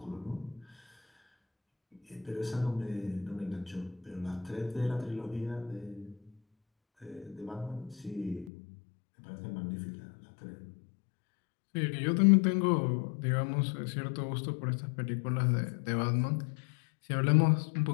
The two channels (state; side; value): drops out; right; at 8.5 s